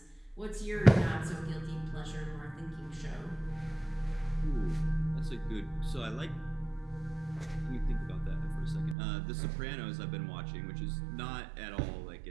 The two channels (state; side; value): drops out; left; at 9.0 s